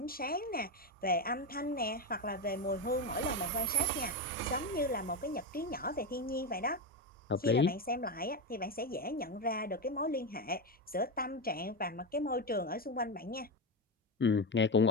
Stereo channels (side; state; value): both; normal; correlation 0.12